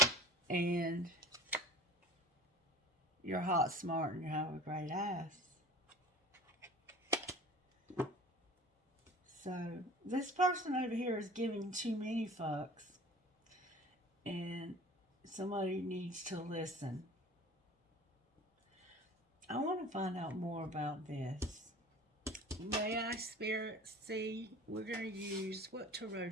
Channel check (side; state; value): both; normal; correlation 0.42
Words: and you're hot, smart, and you have a great ass. So, this person over here is giving too many fucks. And somebody needs to listen. I want to find out more about this. May I, Spirit, see? We're going to use, what tarot